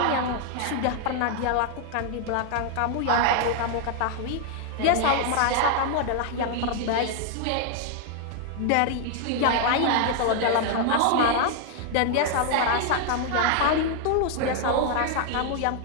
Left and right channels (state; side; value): different; both; correlation 0.00